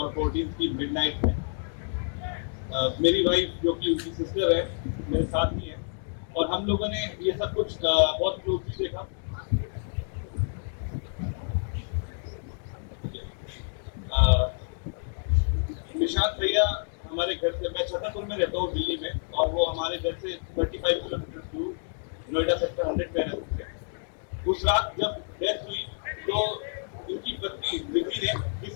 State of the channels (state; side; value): silent; right; digital silence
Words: 14 की मिडनाइट में। मेरी वाइफ जो कि उनकी सिस्टर है मेरे साथ ही है, और हम लोगों ने ये सब कुछ बहुत क्लोजली देखा। निशांत भैया हमारे घर से, मैं छतरपुर में रहता हूँ दिल्ली में, और वो हमारे घर से 35 किलोमीटर दूर नोएडा सेक्टर 100 में रहते थे। उस रात जब डेथ हुई तो उनकी पत्नी विधि ने